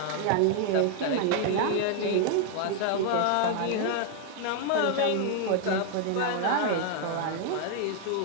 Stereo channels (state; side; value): different; both; correlation 0.00